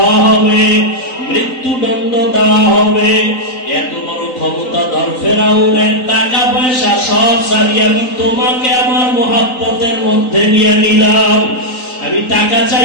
হবে, মৃত্যুদণ্ড দেওয়া হবে। এত বড় ক্ষমতাধর ফেরাউনের টাকা পয়সা সব ছাড়িয়ে আমি তোমাকে আমার মহব্বতের মধ্যে নিয়ে নিলাম। আমি টাকা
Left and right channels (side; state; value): right; late; 3.9 ms